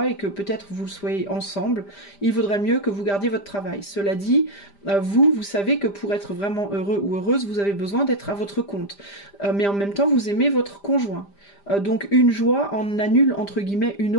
et que peut-être vous soyez ensemble, il vaudrait mieux que vous gardiez votre travail. Cela dit, vous savez que pour être vraiment heureux ou heureuse, vous avez besoin d'être à votre compte. Mais en même temps, vous aimez votre conjoint. Donc une joie en annule entre guillemets une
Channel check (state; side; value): late; right; 5.0 ms